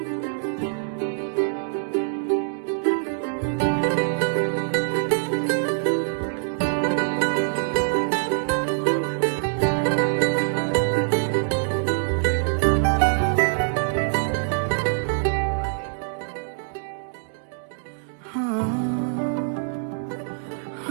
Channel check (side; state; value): left; silent; digital silence